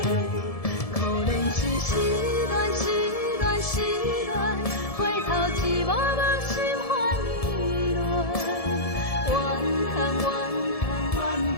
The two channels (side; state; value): right; late; 1.7 ms